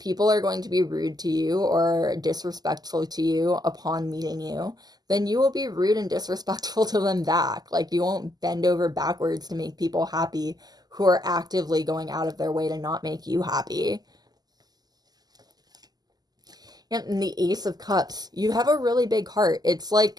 are going to be rude to you or disrespectful to you upon meeting you, then you will be rude and disrespectful to them back. Like, you won't bend over backwards to make people happy who are actively going out of their way to not make you happy. And the Ace of Cups, you have a really big heart. It's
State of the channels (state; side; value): late; left; 0.20 ms